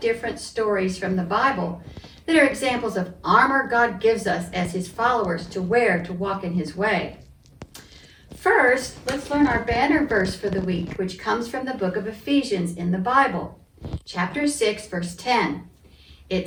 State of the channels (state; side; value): identical; both; correlation 1.00